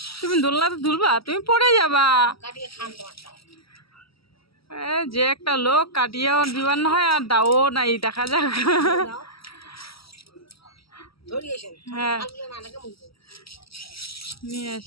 তুমি দোলনাতে ঝুলবা, তুমি পড়ে যাবা। কাটিয়ে খান তোমারটা যে একটা লোক কাটিয়েও দিবার না হয় আর দাও নাই, দেখা যাক। ধরিয়েছেন হ্যাঁ নানাকে মুখ নিয়ে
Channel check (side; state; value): right; late; 0.75 ms